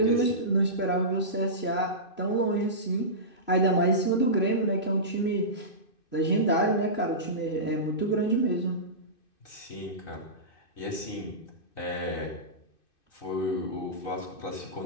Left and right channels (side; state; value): right; late; 2.6 ms